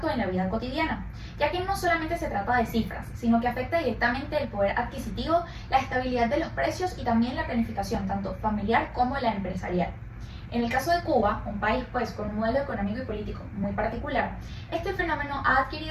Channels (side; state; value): both; identical; correlation 1.00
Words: en la vida cotidiana, ya que no solamente se trata de cifras, sino que afecta directamente el poder adquisitivo, la estabilidad de los precios y también la planificación tanto familiar como la empresarial. En el caso de Cuba, un país pues con un modelo económico y político muy particular, este fenómeno ha